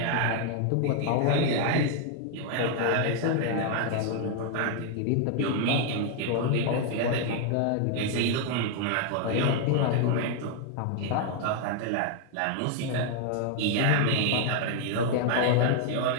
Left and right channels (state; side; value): different; both; correlation 0.00